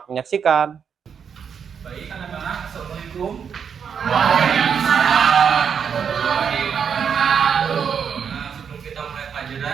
menyaksikan. Baik anak-anak, Assalamualaikum. Nah, sebelum kita mulai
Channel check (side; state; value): left; quieter; 7.2 dB